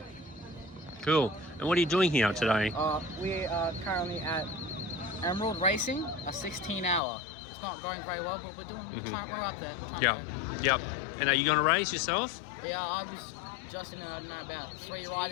Cool. And what are you doing here today? we are currently at Emerald Racing, a 16-hour. It's not going very well, but we're trying, we're up there. We're trying Yeah. to Yep. Yeah. And are you going to race yourself? Yeah, I was just in about 3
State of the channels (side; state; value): right; drops out; at 7.0 s